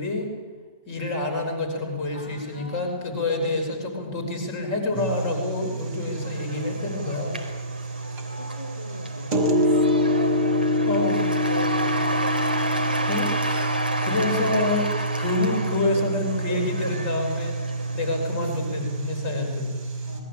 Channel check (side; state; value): both; inverted; correlation -0.43